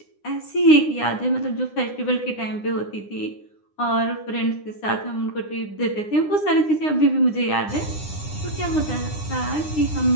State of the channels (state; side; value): late; right; 9.8 ms